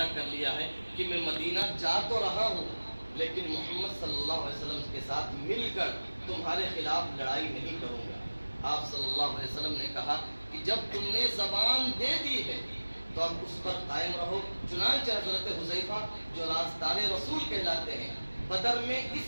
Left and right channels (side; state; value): both; inverted; correlation -1.00